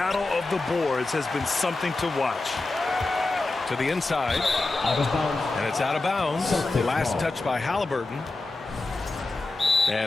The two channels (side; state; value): right; quieter; 3.2 dB